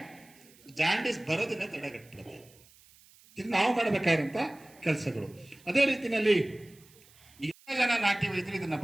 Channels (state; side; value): noise; right; hiss, 26 dB below the sound